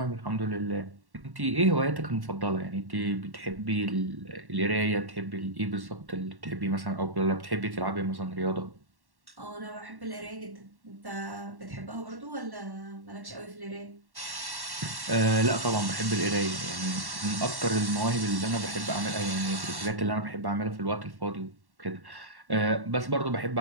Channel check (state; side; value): late; left; 1.1 ms